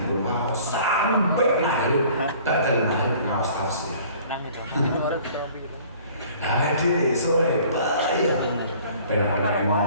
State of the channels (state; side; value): inverted; both; correlation -0.52